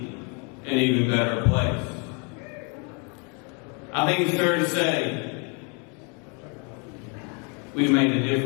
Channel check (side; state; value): right; quieter; 35.5 dB